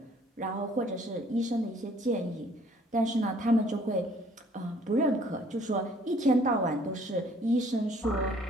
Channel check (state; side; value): normal; both; correlation 0.59